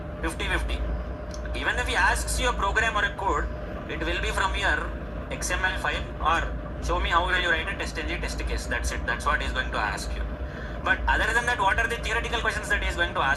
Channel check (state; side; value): identical; both; correlation 1.00